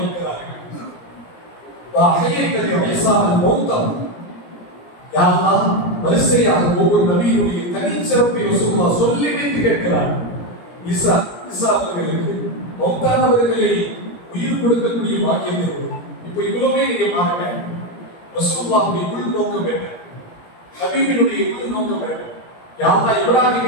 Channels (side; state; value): right; late; 17 ms